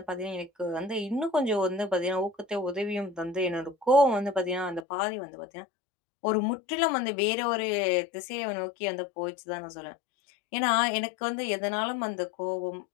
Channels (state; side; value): drops out; right; at 4.8 s